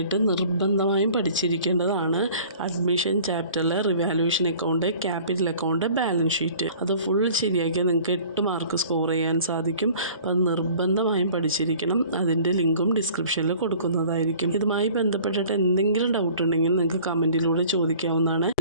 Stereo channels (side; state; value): both; inverted; correlation -0.49